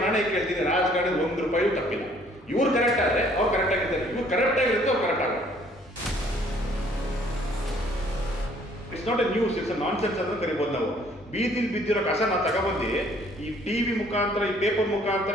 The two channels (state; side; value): normal; both; correlation 0.60